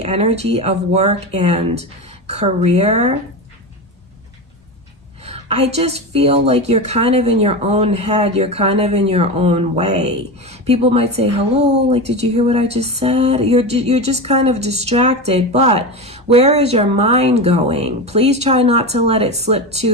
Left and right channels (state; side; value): normal; both; correlation 0.21